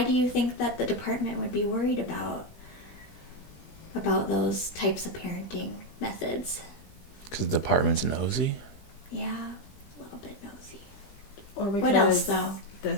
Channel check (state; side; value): late; right; 20 ms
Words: do you think that the department would be worried about those types of parenting methods? Because the department's nosy? Yeah, a little bit nosy. Or because What else, though?